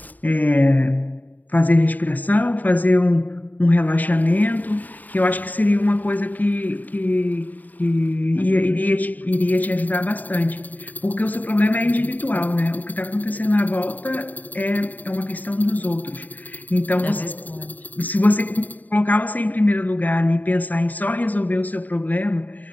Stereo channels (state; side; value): late; right; 0.082 ms